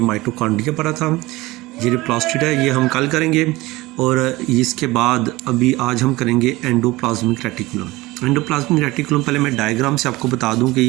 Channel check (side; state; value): left; quieter; 20.2 dB